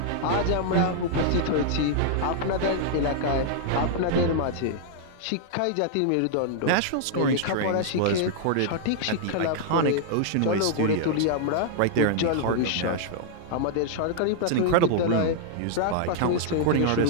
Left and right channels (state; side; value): different; both; correlation -0.01